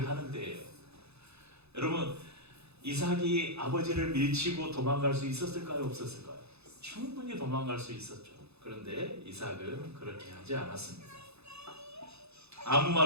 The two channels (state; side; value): late; left; 0.79 ms